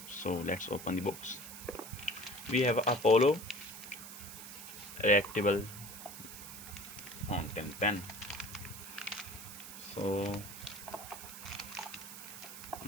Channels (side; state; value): right; noise; hiss, 11 dB below the sound